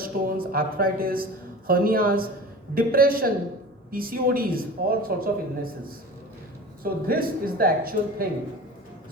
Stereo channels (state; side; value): normal; both; correlation 0.36